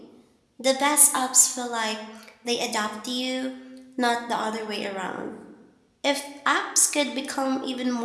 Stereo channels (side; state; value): both; identical; correlation 1.00